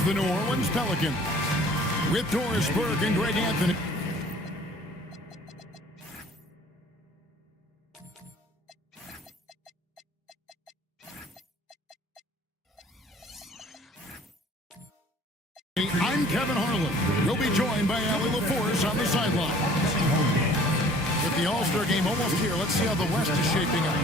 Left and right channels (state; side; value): normal; both; correlation 0.52